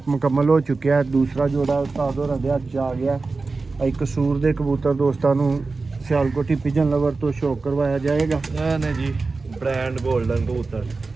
ਮੁਕੰਮਲ ਹੋ ਚੁੱਕਿਆ ਹੈ, ਦੂਸਰਾ ਜੋੜਾ ਉਸਤਾਦ ਹੋਰਾਂ ਦੇ ਹੱਥ 'ਚ ਆ ਗਿਆ। ਇਹ ਕਸੂਰ ਦੇ ਕਬੂਤਰ ਦੋਸਤਾਂ ਨੂੰ ਸਿਆਲਕੋਟੀ ਪਿਜਨ ਲਵਰ ਤੋਂ ਸ਼ੌਕ ਕਰਵਾਇਆ ਜਾਏਗਾ। ਇਹ ਨੇ ਜੀ ਬ੍ਰਾਂਡ 골ਡਨ ਕਬੂਤਰ,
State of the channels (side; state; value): left; quieter; 3.9 dB